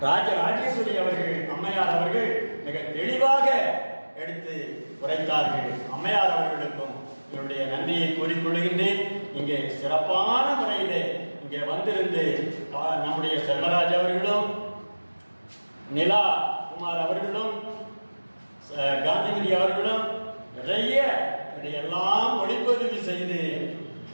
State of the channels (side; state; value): both; inverted; correlation -1.00